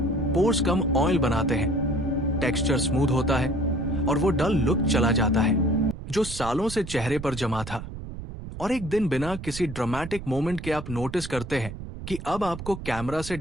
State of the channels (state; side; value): noise; right; rumble, 10 dB below the sound